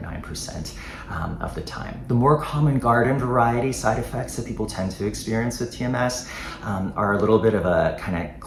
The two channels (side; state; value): both; identical; correlation 1.00